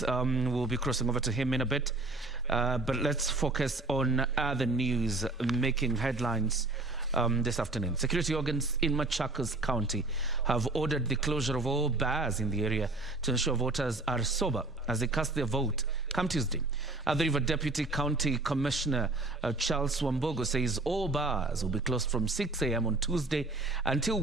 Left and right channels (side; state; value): left; quieter; 3.1 dB